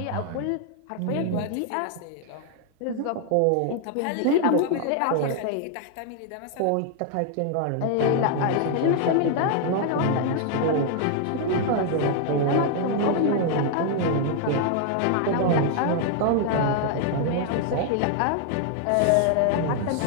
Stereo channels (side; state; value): both; different; correlation 0.00